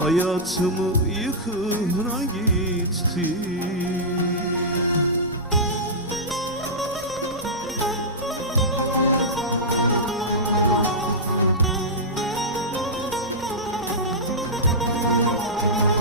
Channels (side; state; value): both; normal; correlation -0.12